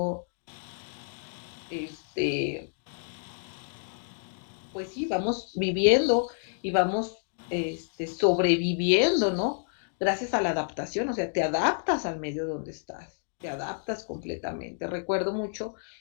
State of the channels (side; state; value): right; silent; digital silence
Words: este, pues sí, vamos viviendo y vamos sobreviviendo, ¿no? Gracias a la adaptación, o sea, te adaptas al medio donde estás, te adaptas completamente. Recuerdo mucho